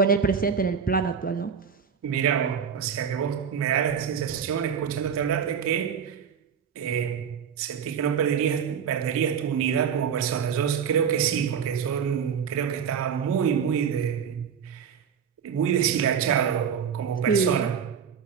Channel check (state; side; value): quieter; left; 7.3 dB